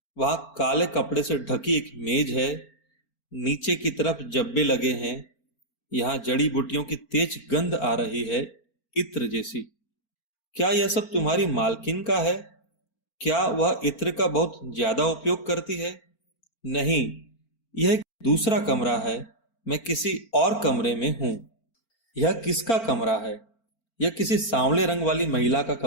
वहां काले कपड़े से ढकी एक मेज है। नीचे की तरफ जब्बे लगे हैं। यहाँ जड़ी बूटियों की तेज गंध आ रही है, इत्र जैसी। क्या यह सब तुम्हारी मालकिन का है? क्या वह इत्र का बहुत ज्यादा उपयोग करती है? नहीं, यह एक दूसरा कमरा है। मैं किसी और कमरे में हूं। यह किसका कमरा है? यह किसी सांवले रंग वाली महिला का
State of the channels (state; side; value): late; right; 4.4 ms